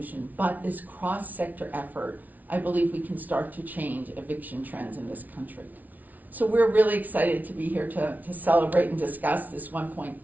but this cross-sector effort, I believe we can start to change eviction trends in this country. So we're really excited to be here to celebrate and discuss this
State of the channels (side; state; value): left; late; 0.077 ms